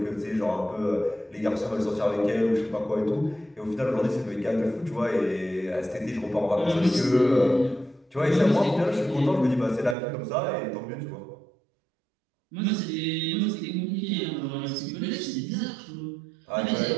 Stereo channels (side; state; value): left; drops out; at 10.0 s